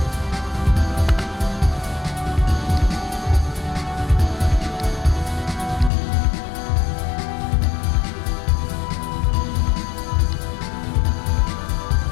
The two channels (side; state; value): right; drops out; at 5.9 s